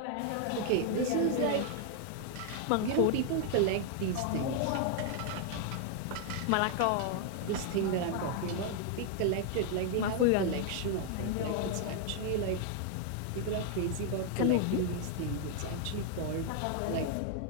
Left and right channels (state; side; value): different; both; correlation 0.00